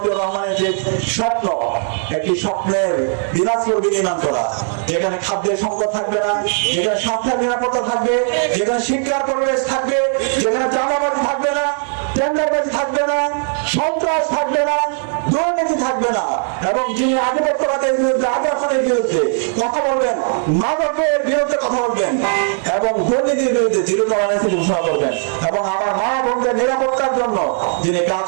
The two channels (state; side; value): silent; left; 56 dB below the other